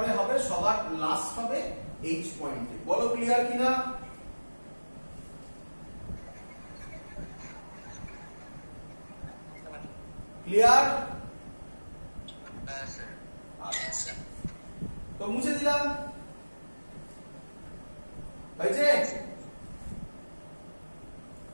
হবে সবার লাস্ট হবে এইচ পয়েন্টে। বলো ক্লিয়ার কিনা? ক্লিয়ার? আচ্ছা, তো মুছে দিলাম, হয়েছে?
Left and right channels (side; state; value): both; inverted; correlation -1.00